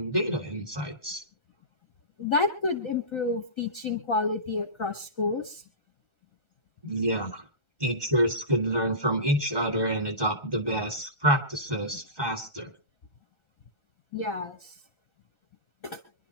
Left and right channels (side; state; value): right; late; 1.4 ms